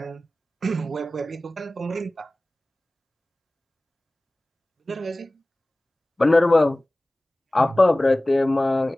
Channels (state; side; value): normal; both; correlation 0.98